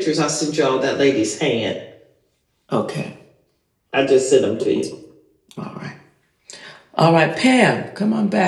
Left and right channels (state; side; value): identical; both; correlation 1.00